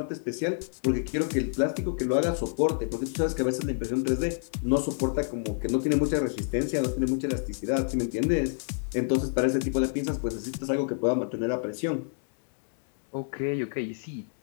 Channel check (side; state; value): right; silent; 59 dB below the other